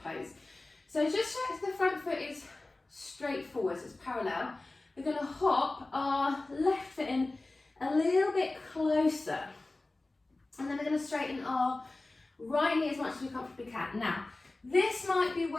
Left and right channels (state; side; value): quieter; right; 3.0 dB